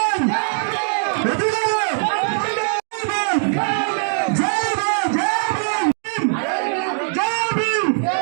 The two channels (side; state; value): left; silent; digital silence